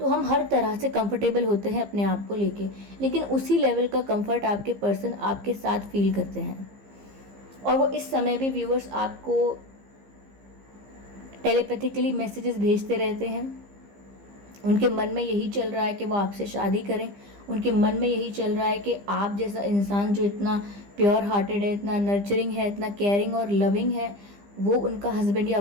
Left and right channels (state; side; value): late; left; 15 ms